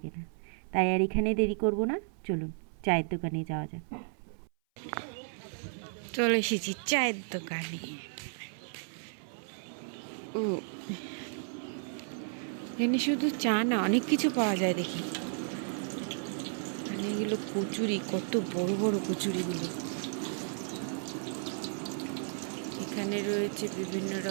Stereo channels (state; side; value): silent; left; 56 dB below the other